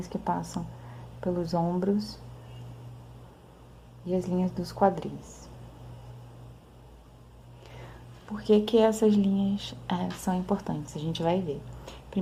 que passam pelos ombros e as linhas dos quadris. Por que que essas linhas são importantes? A gente vai ver.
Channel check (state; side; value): identical; both; correlation 1.00